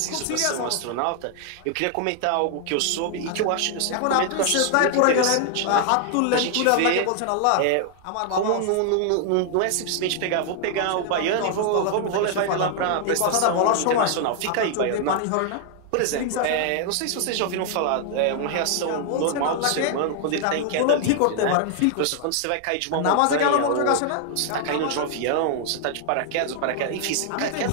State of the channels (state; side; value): different; both; correlation 0.00